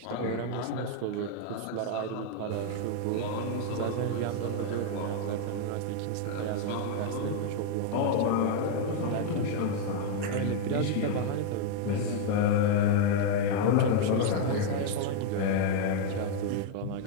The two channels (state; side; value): different; both; correlation 0.00